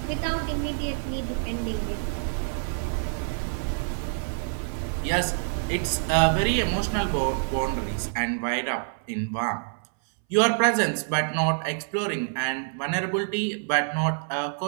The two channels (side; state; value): left; silent; 60 dB below the other